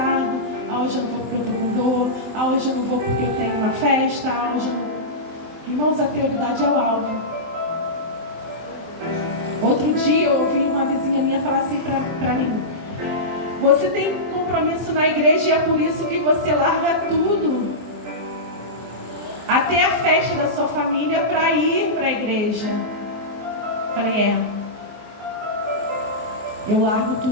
hoje eu não vou porque eu estou com dor, hoje eu não vou porque eu tenho uma festa, hoje eu não... Irmãos, a prioridade é o alvo. Outro dia eu ouvi uma vizinha minha falar assim para mim: você tem compromisso na igreja e é por isso que você larga tudo, até a festa da sua família, para ir para a igreja. Falei, eu largo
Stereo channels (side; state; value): left; late; 23 ms